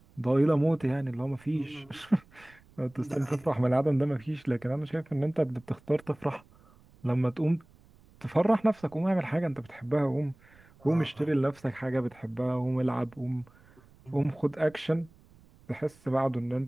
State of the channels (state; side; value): noise; right; rumble, 27 dB below the sound